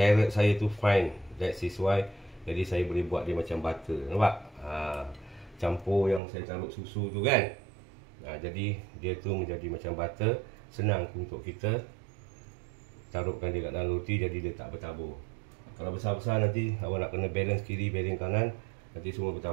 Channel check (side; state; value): left; drops out; at 6.2 s